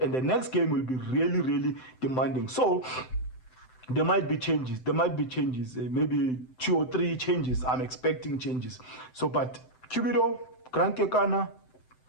And the next game will be really, really demanding. So there might be changes. Maybe 2 or 3 changes. I'm expecting changes. So, but Cubido, Grand Kekana,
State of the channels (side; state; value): right; late; 7.8 ms